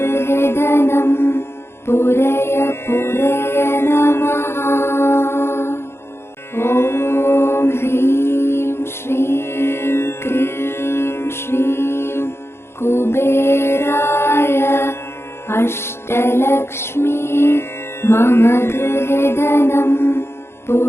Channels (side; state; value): right; late; 0.12 ms